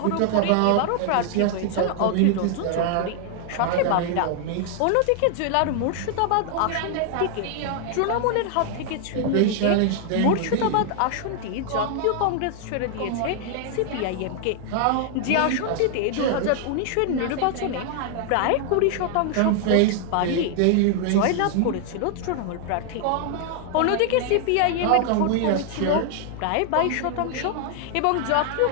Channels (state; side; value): different; both; correlation 0.00